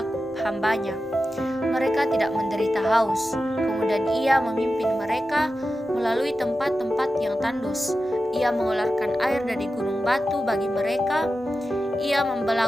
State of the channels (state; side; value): normal; both; correlation 0.92